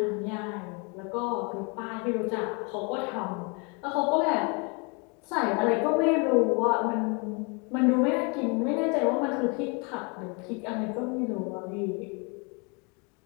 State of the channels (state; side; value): quieter; right; 32.5 dB